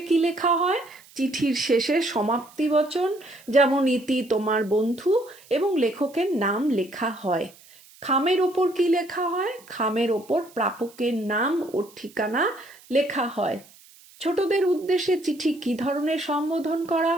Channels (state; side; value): noise; right; hiss, 25 dB below the sound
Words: কি লেখা হয়? চিঠির শেষে সমাপ্তি বচন, যেমন ইতি তোমার বন্ধু, এবং লেখকের নাম লেখা হয়। খামের ওপর কি লেখা হয়? খামের ওপর প্রাপকের নাম ও ঠিকানা লেখা হয়। ছোটদের উদ্দেশ্যে চিঠি কি ধরনের সম্বোধন করা